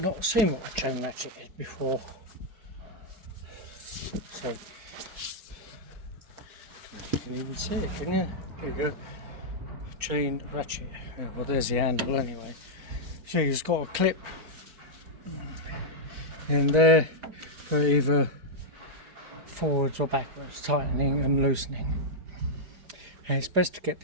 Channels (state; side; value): late; left; 4.5 ms